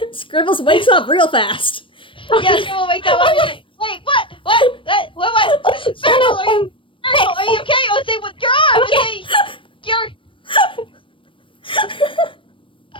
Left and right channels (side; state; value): right; late; 0.25 ms